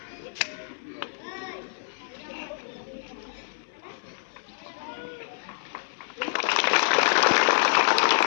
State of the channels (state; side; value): silent; right; 60 dB below the other